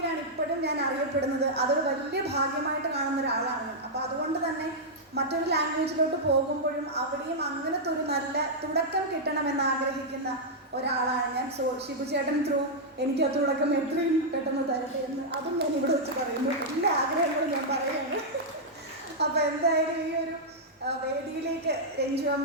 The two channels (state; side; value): normal; both; correlation -0.06